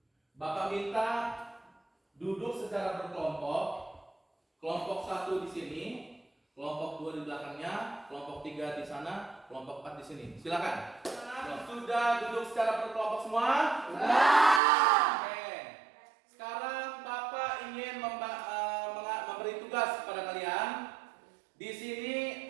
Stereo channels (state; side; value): drops out; left; at 14.6 s